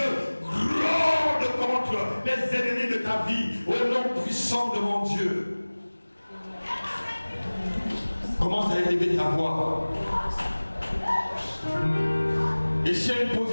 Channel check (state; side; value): inverted; both; correlation -1.00